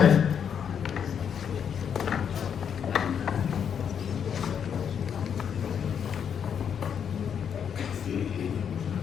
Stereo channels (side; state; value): right; quieter; 7.8 dB